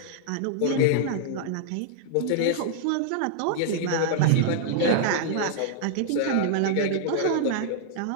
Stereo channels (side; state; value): both; different; correlation -0.01